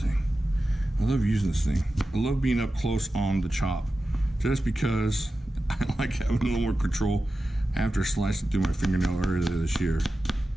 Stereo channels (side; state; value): both; normal; correlation 0.93